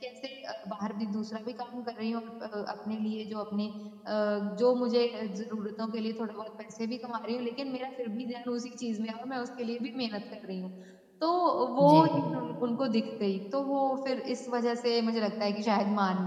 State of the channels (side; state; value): both; identical; correlation 1.00